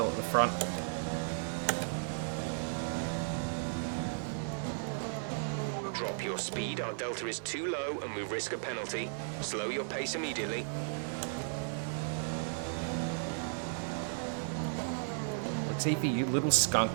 at the front. Drop your speed. Our delta is too low and we risk a penalty. Slow your pace immediately. Latifi, you little skunk.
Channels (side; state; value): left; silent; digital silence